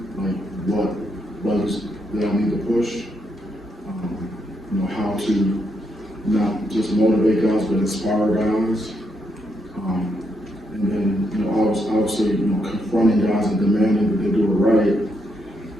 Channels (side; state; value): both; normal; correlation 0.78